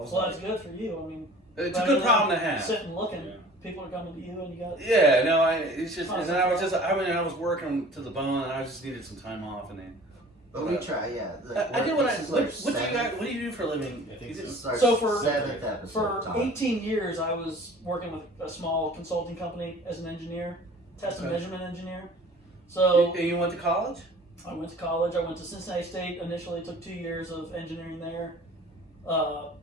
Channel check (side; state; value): both; normal; correlation 0.46